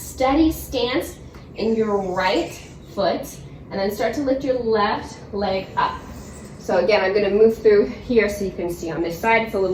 stance in your right foot. And then start to lift your left leg up. So again, I'm going to move through here so you can see on this side. It's a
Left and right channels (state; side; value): identical; both; correlation 1.00